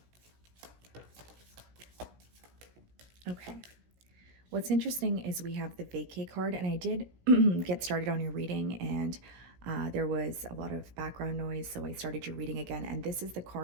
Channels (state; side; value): late; left; 17 ms